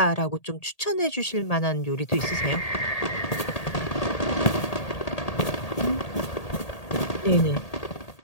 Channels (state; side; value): late; right; 1.8 ms